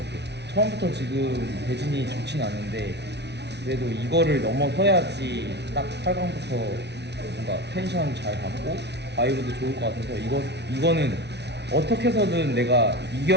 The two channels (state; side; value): late; left; 0.50 ms